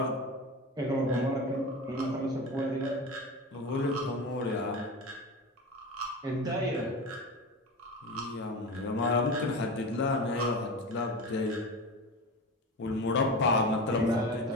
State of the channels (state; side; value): normal; both; correlation 0.27